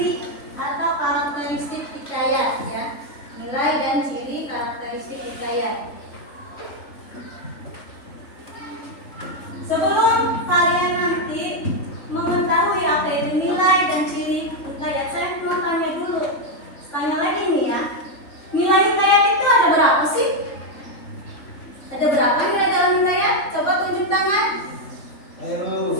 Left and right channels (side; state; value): right; late; 3.5 ms